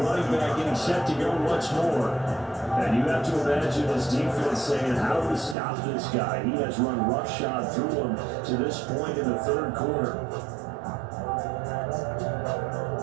back getting set to go once more. And you have to imagine this defense saying, how do we stop this guy? He has run roughshod through him to this point in the third quarter.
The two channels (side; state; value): left; drops out; at 5.6 s